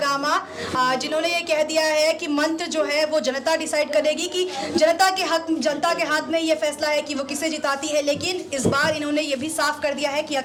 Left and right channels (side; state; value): both; identical; correlation 1.00